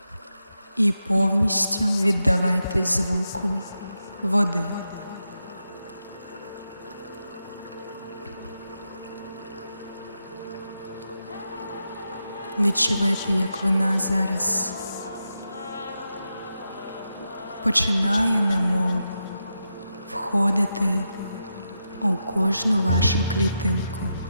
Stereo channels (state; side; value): inverted; both; correlation -0.87